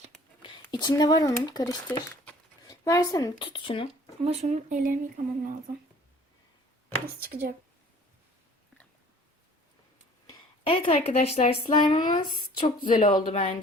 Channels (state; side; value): normal; both; correlation 0.51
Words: İçinde var onun. Karıştır. Versene. Tut şunu. Ama şunun ellerimi yıkamam lazım. Nasıl çıkacak? Evet arkadaşlar slime'ımız çok güzel oldu